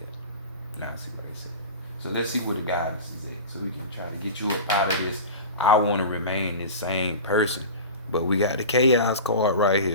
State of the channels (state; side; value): inverted; both; correlation -0.31